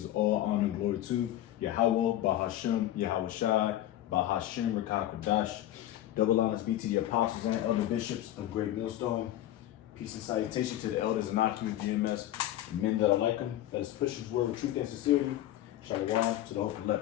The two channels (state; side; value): quieter; right; 13.4 dB